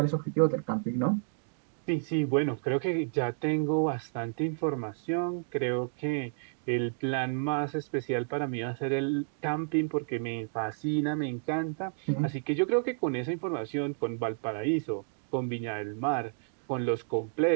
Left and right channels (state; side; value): silent; left; digital silence